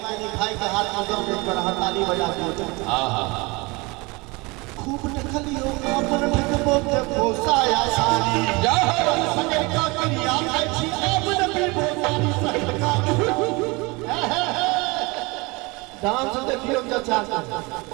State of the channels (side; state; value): left; quieter; 25.6 dB